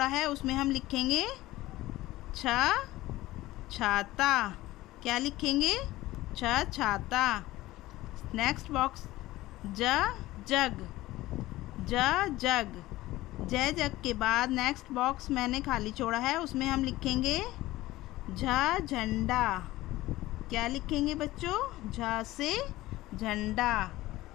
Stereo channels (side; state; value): right; quieter; 17.4 dB